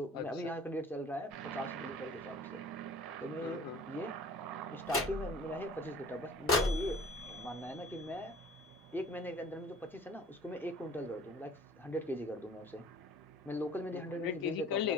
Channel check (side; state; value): both; normal; correlation 0.47